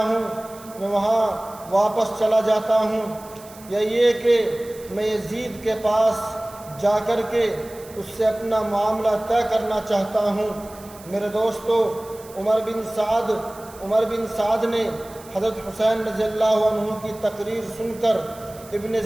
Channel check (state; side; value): noise; right; hiss, 21 dB below the sound